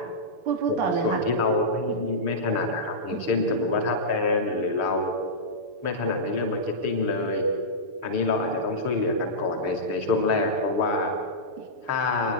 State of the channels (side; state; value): left; late; 7.0 ms